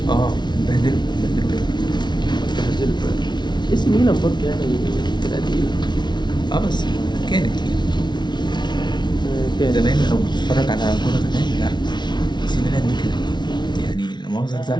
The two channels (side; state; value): right; late; 0.21 ms